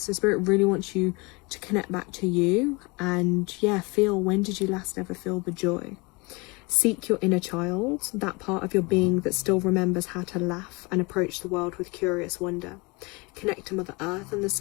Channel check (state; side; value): quieter; right; 27.1 dB